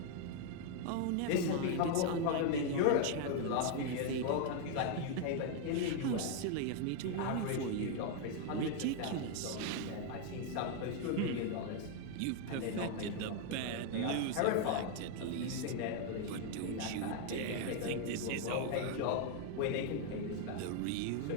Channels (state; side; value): different; both; correlation 0.00